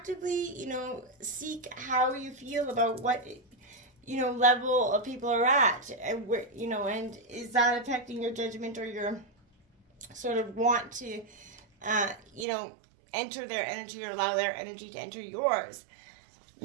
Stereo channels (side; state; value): left; drops out; at 12.5 s